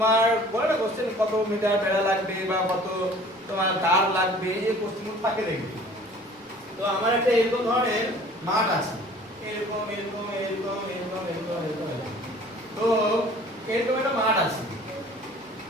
বলে না কোশ্চেন কত মিটার বেড়া লাগবে বা কত তোমার তার লাগবে, এই কোশ্চেনগুলো থাকে দেখবে। তো আমার একটা এরকম ধরনের মাঠ আছে, এরকম এরকম এরকম এরকম এরকম এরকম এরকম। তো এরকম একটা মাঠ আছে,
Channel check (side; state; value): both; normal; correlation 0.49